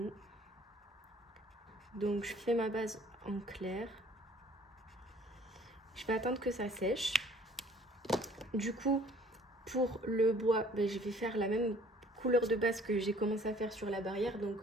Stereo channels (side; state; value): both; normal; correlation 0.55